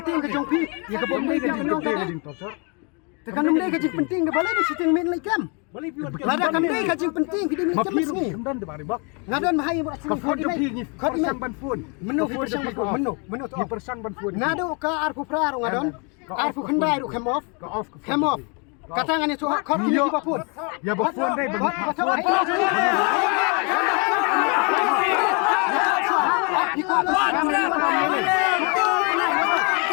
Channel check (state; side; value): quieter; right; 34.3 dB